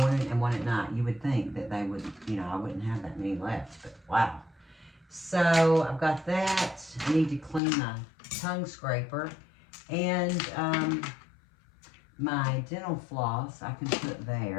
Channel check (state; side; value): drops out; right; at 7.6 s